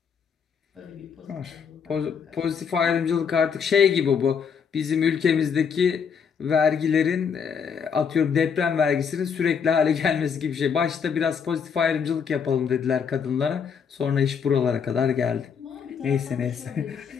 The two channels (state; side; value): quieter; right; 6.7 dB